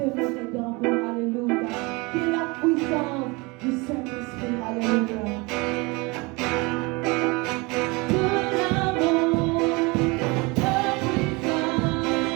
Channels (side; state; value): left; quieter; 26.4 dB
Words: dans vous, alléluia. Qui est la puissance du Saint-Esprit, alléluia.